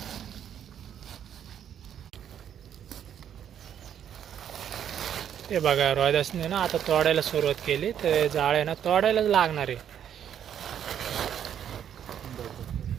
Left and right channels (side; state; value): left; quieter; 9.3 dB